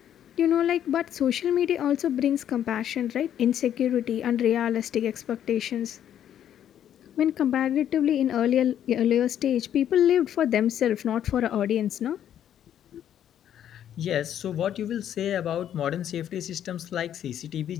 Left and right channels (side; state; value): right; quieter; 10.3 dB